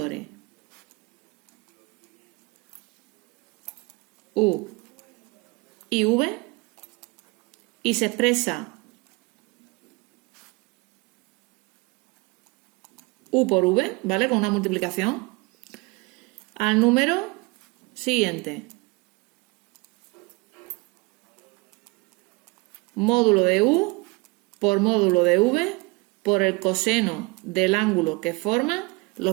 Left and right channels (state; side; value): quieter; left; 26.5 dB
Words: U y V y se expresa U por V, ¿vale? Con una multiplicación al número siguiente. Módulo de U por módulo de V por el coseno del ángulo que forman los